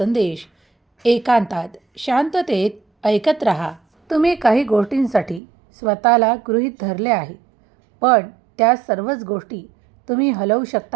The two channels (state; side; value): drops out; left; at 5.4 s